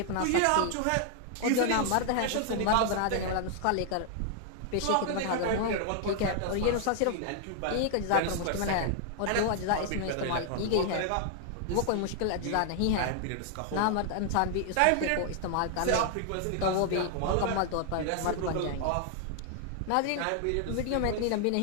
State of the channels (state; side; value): different; both; correlation 0.00